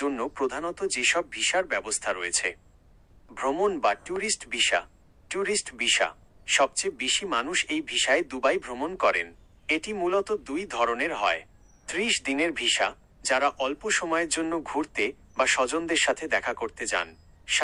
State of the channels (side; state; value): both; identical; correlation 1.00